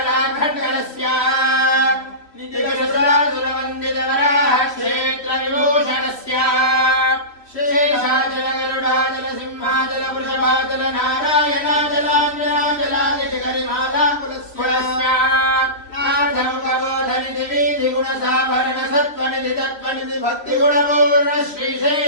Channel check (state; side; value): late; right; 3.0 ms